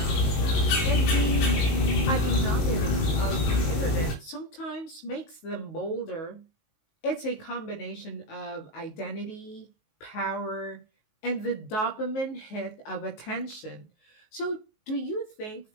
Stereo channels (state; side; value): late; right; 19 ms